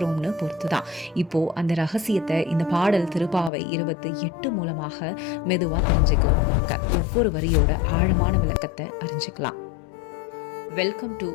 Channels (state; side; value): drops out; right; at 3.5 s